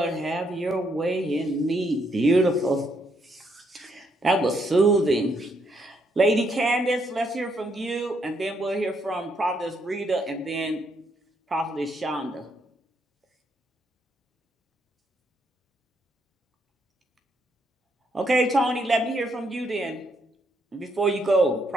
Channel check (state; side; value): normal; both; correlation 0.74